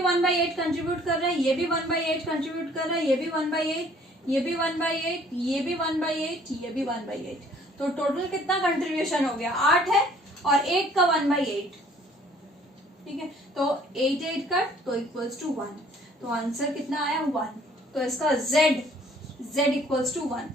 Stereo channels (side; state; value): both; normal; correlation 0.58